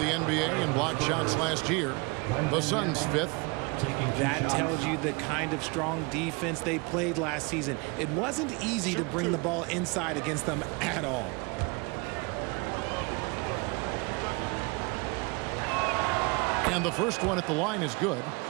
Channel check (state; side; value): quieter; left; 28.3 dB